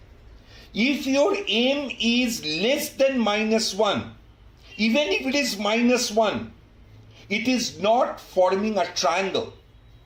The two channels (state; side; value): identical; both; correlation 1.00